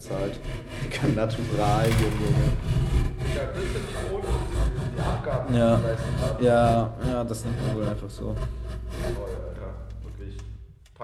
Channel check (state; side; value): identical; both; correlation 1.00